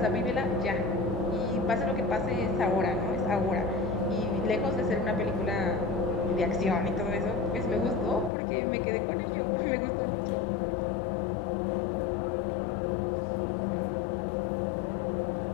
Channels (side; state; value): right; drops out; at 8.3 s